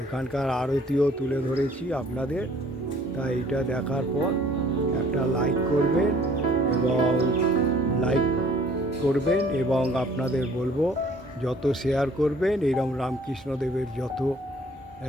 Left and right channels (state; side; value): normal; both; correlation 0.56